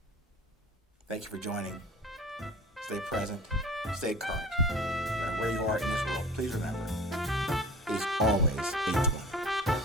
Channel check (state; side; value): normal; both; correlation 0.40